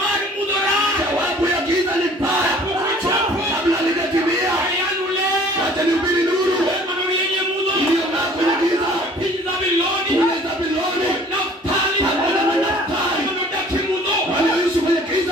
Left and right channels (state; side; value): normal; both; correlation 0.52